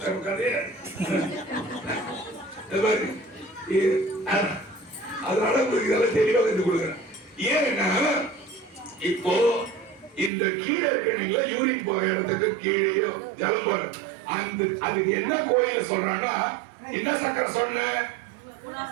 அதனால உங்களுக்கு இதெல்லாம் தெளிவா கத்து கொடுக்குறேன். ஏன்னா இப்போ இந்த கீழே இருக்கீங்களா, யூரின் போற இடத்துக்கு கீழேயோ ஜலம் போற அதுக்கு என்ன கோயில சொல்றான்னா, என்ன சக்கரை சொன்ன?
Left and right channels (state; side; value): drops out; left; at 10.3 s